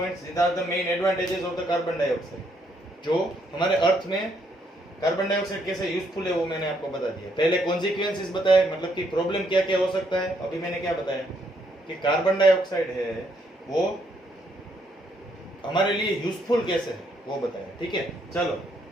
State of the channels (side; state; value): both; normal; correlation 0.72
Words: These are the main advantages of the carbon dioxide. जो हमारे अर्थ में कार्बन डाइऑक्साइड कैसे यूजफुल है वो मैंने आपको बता दिया। पहले कॉन्सिक्वेंसेस बताए, मतलब कि प्रॉब्लम क्या क्या हो सकता है। अभी मैंने क्या बताया कि कार्बन डाइऑक्साइड है वो हमारे लिए यूजफुल कैसे है वो बताया। ठीक है, चलो